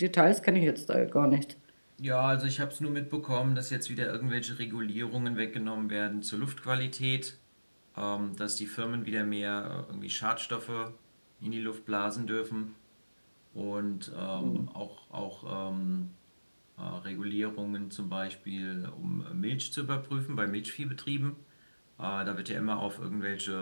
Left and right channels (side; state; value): both; inverted; correlation -1.00